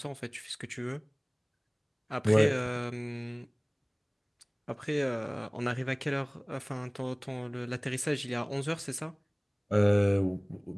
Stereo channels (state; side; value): identical; both; correlation 1.00